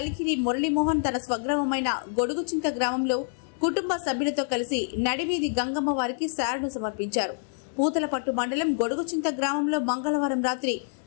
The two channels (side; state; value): right; silent; digital silence